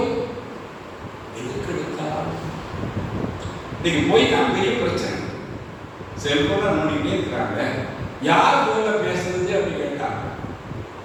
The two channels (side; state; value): both; identical; correlation 1.00